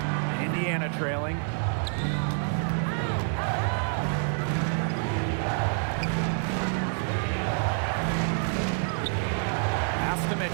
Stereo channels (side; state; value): left; silent; 55 dB below the other